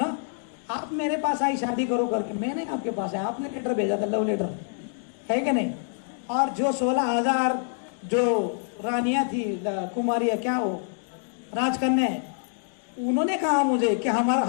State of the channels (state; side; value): silent; right; digital silence